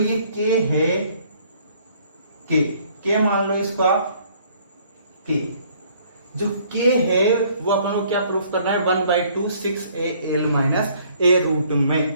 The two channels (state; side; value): inverted; both; correlation -0.60